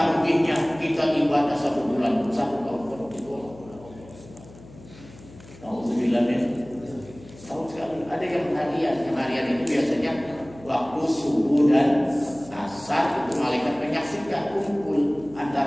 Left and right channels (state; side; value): noise; left; hum, 20 dB below the sound